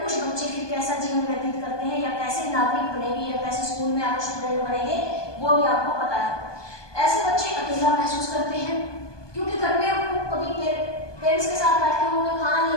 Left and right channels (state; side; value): late; right; 1.2 ms